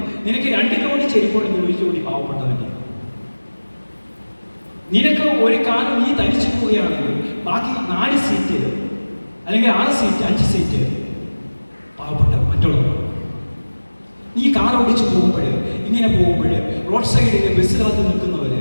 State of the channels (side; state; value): both; inverted; correlation -1.00